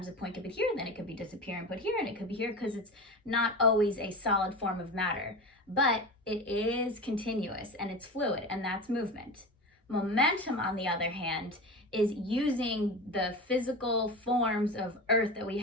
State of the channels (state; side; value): normal; both; correlation 0.28